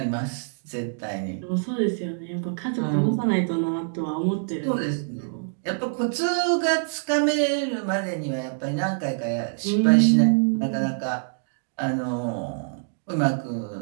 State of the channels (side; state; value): left; silent; digital silence